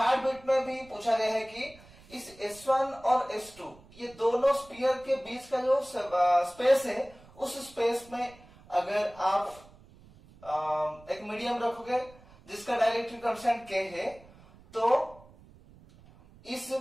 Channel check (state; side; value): noise; right; rumble, 24 dB below the sound